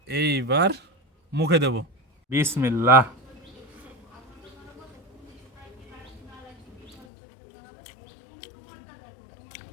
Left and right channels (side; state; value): right; drops out; at 7.1 s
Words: এইবার মুখে দেব। বিসমিল্লাহ।